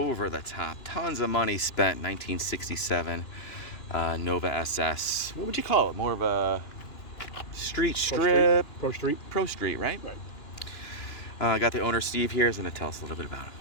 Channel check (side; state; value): right; late; 2.9 ms